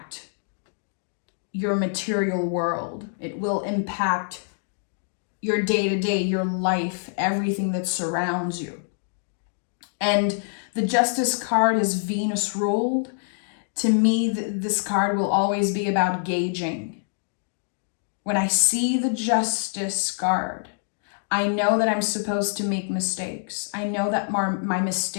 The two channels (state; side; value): silent; right; digital silence